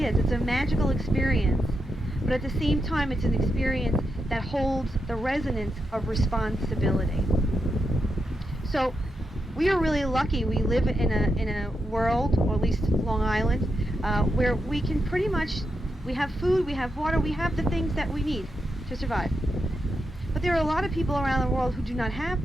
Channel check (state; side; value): normal; both; correlation 0.85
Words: is. It's a magical experience. But at the same time, it's an experience that holds the resonance of responsibility. So we are really lucky. We live in a world, or at least Long Island, where we can pretty much, we have food, we have water, we have the things that we need to survive. But there are a lot of people around the world who do not have